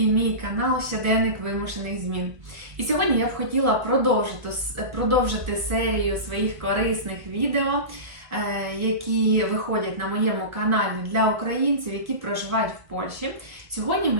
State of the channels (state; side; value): late; left; 1.5 ms